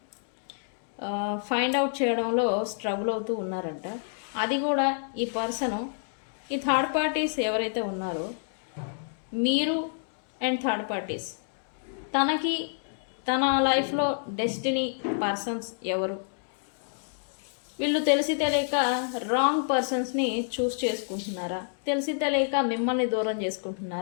ఫైండ్ అవుట్ చేయడంలో స్ట్రగుల్ అవుతూ ఉన్నారంట. అది కూడా ఈ పర్సను ఈ థర్డ్ పార్టీస్ ఎవరైతే ఉన్నారో మీరు అండ్ థర్డ్ పార్టీస్, తనకి తన లైఫ్లో డెస్టినీ పర్సన్స్ ఎవరు, వీళ్ళు తెలిసి తెలియక రాంగ్ పర్సన్స్ని చూస్ చేసుకుంటున్నారా, తెలిసి తెలియక మిమ్మల్ని దూరం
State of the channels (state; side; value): silent; right; digital silence